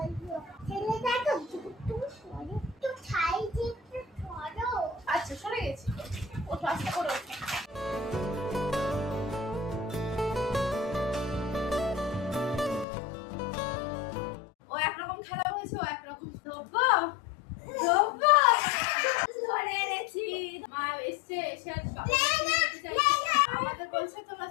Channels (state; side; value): drops out; right; at 12.9 s